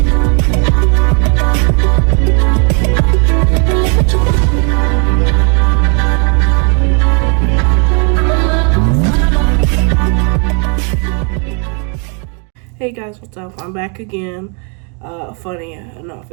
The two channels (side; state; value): left; quieter; 38.2 dB